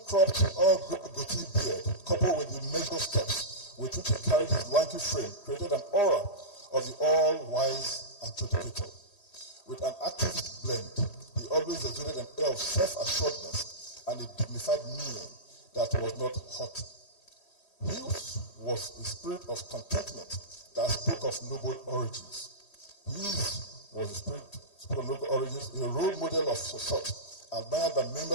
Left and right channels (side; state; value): right; late; 3.1 ms